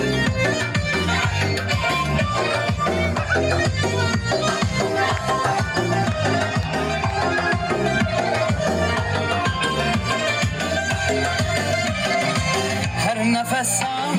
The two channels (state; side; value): identical; both; correlation 1.00